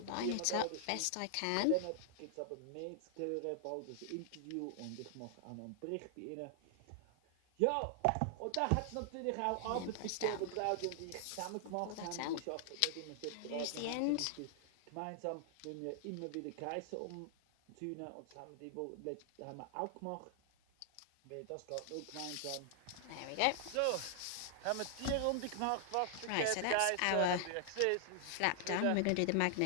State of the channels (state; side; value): different; both; correlation 0.00